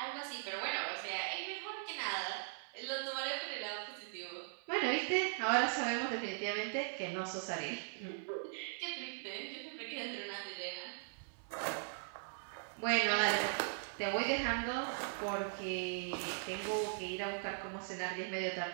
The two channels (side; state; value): left; silent; 51 dB below the other